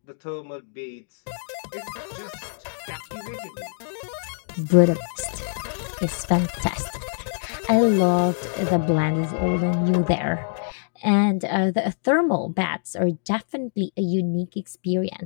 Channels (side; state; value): right; silent; digital silence